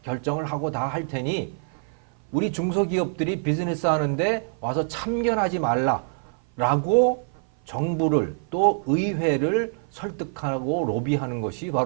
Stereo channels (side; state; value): left; silent; 56 dB below the other